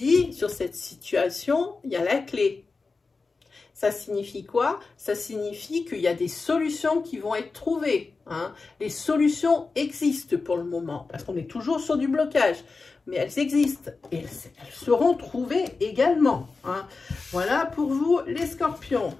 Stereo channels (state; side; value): quieter; right; 4.1 dB